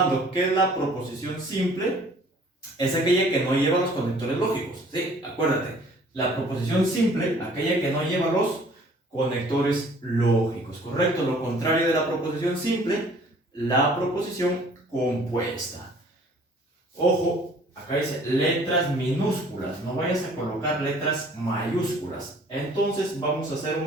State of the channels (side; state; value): both; normal; correlation 0.54